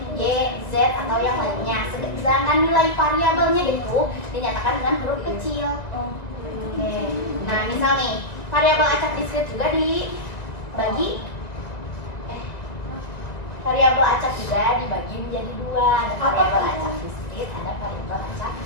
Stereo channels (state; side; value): late; right; 1.9 ms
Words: Y, Z, atau yang lainnya. Sedangkan nilai variabelnya itu dinyatakan dengan huruf kecil. Oke. Nah, misal nih, variabel acak diskrit juga dibagi variabel acak juga dibagi menjadi 2. Ada variabel acak diskrit, ada variabel acak